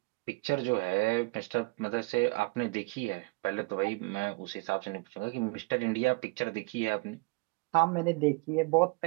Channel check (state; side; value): quieter; left; 26.1 dB